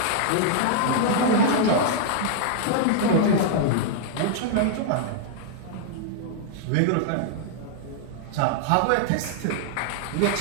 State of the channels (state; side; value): different; both; correlation -0.01